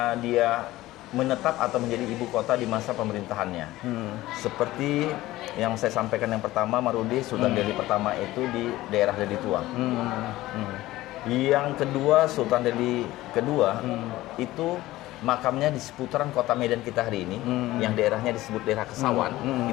dia menetap atau menjadi ibu kota di masa pemerintahannya. Seperti yang saya sampaikan yang pertama, Marudi, Sultan Delhi pertama itu di daerah Deli Tua. Yang kedua, Sultan Delhi kedua itu makamnya di seputaran kota Medan kita hari ini, yang daerahnya disebut daerah Kesawan,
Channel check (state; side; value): quieter; right; 16.9 dB